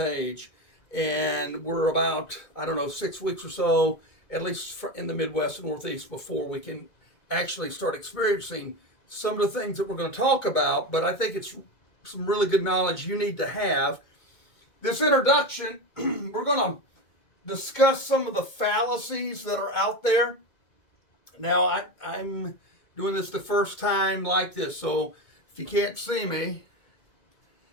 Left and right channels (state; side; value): late; right; 2.1 ms